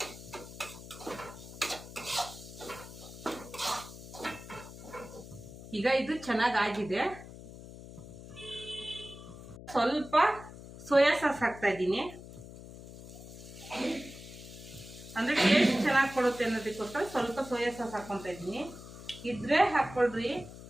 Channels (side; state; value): left; noise; hum, 14 dB below the sound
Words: ಈಗ ಇದು ಚೆನ್ನಾಗಾಗಿದೆ. ಸ್ವಲ್ಪ ಸೋಯಾ ಸಾಸ್ ಹಾಕ್ತಾ ಇದ್ದೀನಿ. ಅಂದರೆ ಟೇಸ್ಟ್ ಚೆನ್ನಾಗಿ ಕೊಡುತ್ತೆ ಅನ್ನೋದಕ್ಕೋಸ್ಕರ ಸ್ವಲ್ಪ ಸೋಯಾ ಸಾಸ್ ಹಾಕ್ಕೊತಾ ಇದ್ದೀನಿ. ಇದ್ರೆ ಹಾಕ್ಕೊಳ್ರಿ,